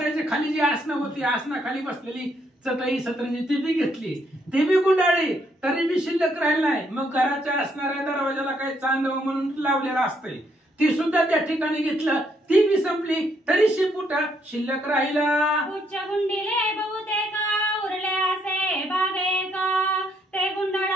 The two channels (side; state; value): both; normal; correlation 0.72